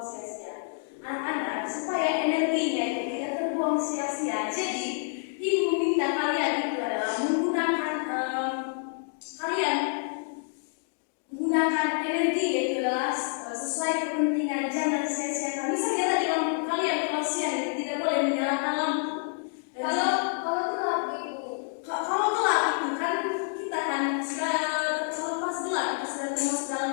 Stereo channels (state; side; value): silent; right; 59 dB below the other